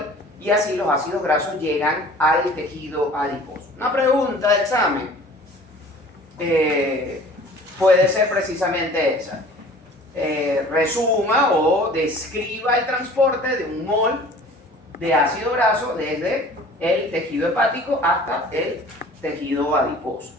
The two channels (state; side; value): normal; both; correlation 0.47